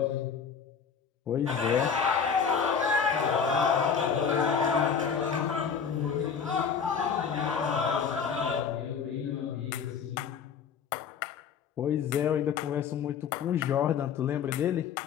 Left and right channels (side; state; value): right; quieter; 6.8 dB